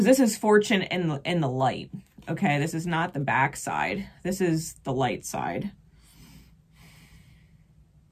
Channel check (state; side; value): identical; both; correlation 1.00